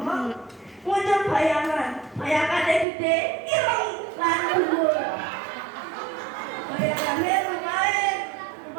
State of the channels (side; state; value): left; drops out; at 2.9 s